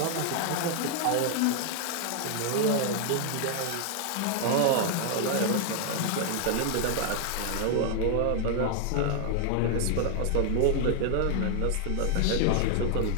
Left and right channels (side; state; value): both; different; correlation 0.00